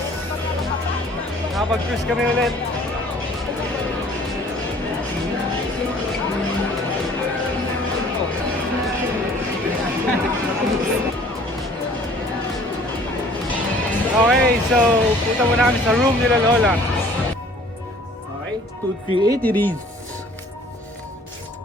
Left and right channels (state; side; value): normal; both; correlation 0.53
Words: Nakapag-cruise kami ulit. Okay, so punta muna kami sa room nila Lola. Okay, 238 it is.